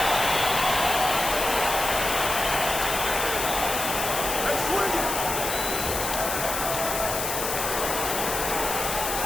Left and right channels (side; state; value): left; noise; hiss, 3 dB below the sound